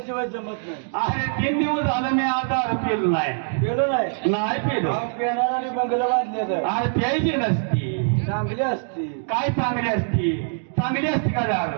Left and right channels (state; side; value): silent; left; digital silence